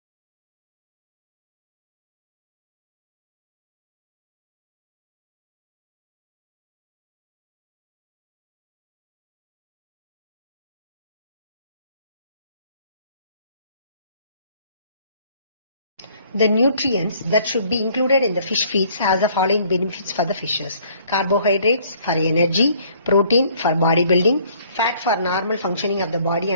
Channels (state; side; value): inverted; both; correlation -0.60